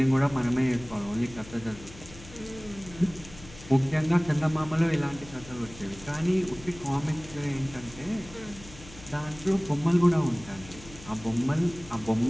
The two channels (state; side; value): noise; left; hum, 18 dB below the sound